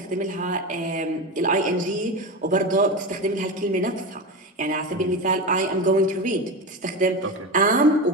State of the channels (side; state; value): both; normal; correlation 0.21